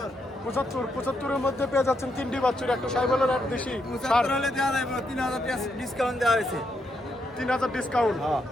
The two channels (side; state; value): both; normal; correlation 0.79